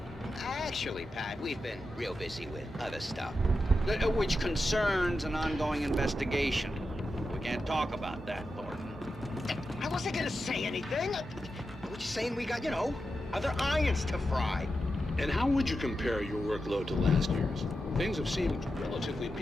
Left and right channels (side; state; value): both; normal; correlation 0.89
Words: Actually, Pat, we've been real busy with other stuff, which concerns an ongoing investigation. We can't talk about that, Thornton. I wasn't gonna say anything. I was just saying we got, other irons to fry. And how would you compare your workload to last year's? Things have seemed relatively